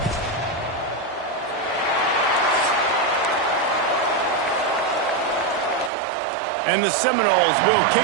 And the Seminoles will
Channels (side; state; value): left; drops out; at 5.9 s